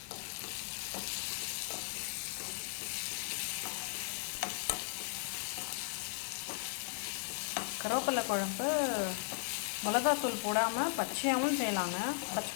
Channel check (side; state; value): right; silent; 53 dB below the other